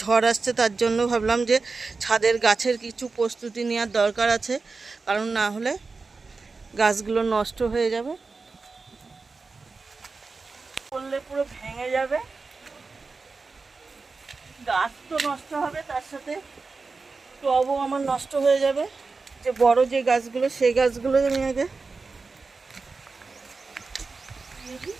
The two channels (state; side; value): quieter; left; 4.2 dB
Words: ঝড় আসছে, তার জন্য ভাবলাম যে ছাদের গাছের কিছু প্রস্তুতি নেওয়ার দরকার আছে, কারণ না হলে গাছগুলো নষ্ট হয়ে যাবে, পড়লে পুরো ভেঙে যাবে, গাছ তো নষ্ট হবে, তার সাথে টবও আমার নষ্ট হয়ে যাবে। যে বড় যে গাছগুলো, সেই গাছগুলো আমি আগে